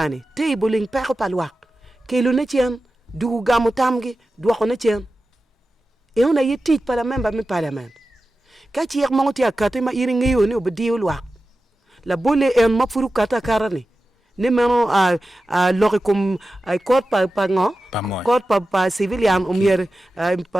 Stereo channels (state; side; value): normal; both; correlation 0.94